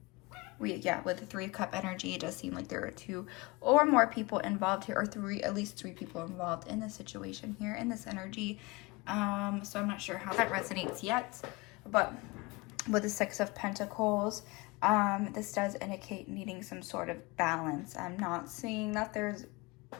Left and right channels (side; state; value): right; quieter; 24.8 dB